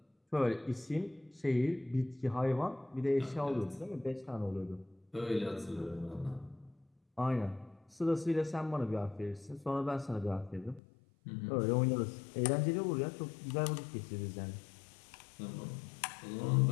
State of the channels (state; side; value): drops out; right; at 10.8 s